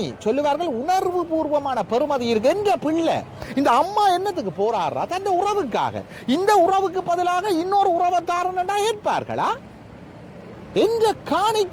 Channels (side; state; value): both; identical; correlation 1.00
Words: சொல்லுவார்கள் உணர்வு பூர்வமான பெருமதி இருக்கு. என்ற பிள்ளை இந்த அம்மா என்னத்துக்கு போராடுறா? தன் உறவுக்காக. இந்த உறவுக்கு பதிலாக இன்னொரு உறவுக்காரன் ஏற்பார்களா? என்ற